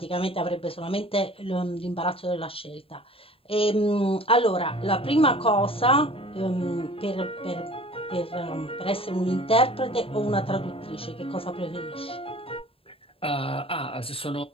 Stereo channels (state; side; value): late; right; 0.27 ms